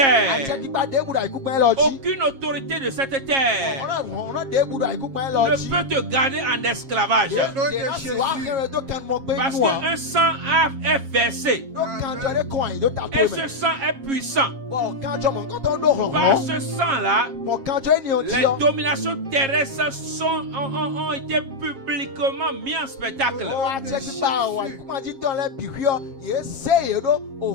Atieki ba de buda ikupen lo ji. aucune autorité de cette terre Ona de buda ikupen lo ne ji. peut te garder en esclavage. Parce qu'un sang est versé et ce sang est puissant. Par ce sang-là, les dominations terrestres ont été publiquement mis en spectacle.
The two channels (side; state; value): left; late; 7.4 ms